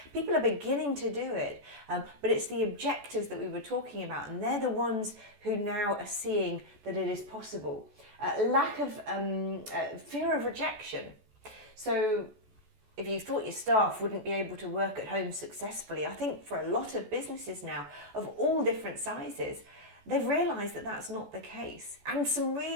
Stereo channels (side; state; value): left; late; 14 ms